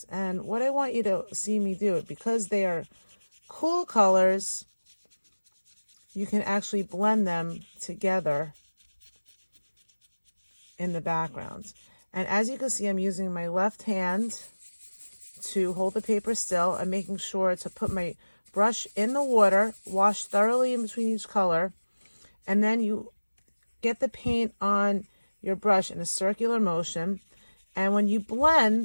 And what I want you to see me do, because they are cool colors, you can actually blend them together in the background. And as you can see, I'm using my left hand to hold the paper still. I'm making sure to put my brush in the water, wash thoroughly in between each color, and then you get the paint on your brush in a circular motion. And when you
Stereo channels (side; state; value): both; inverted; correlation -1.00